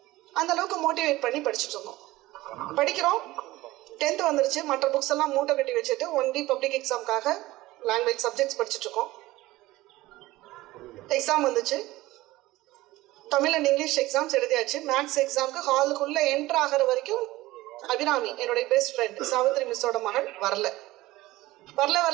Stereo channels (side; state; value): left; quieter; 18.1 dB